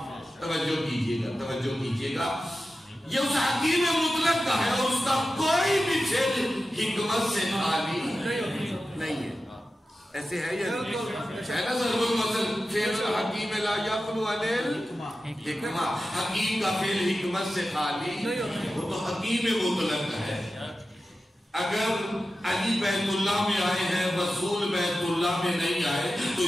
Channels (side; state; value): both; normal; correlation 0.93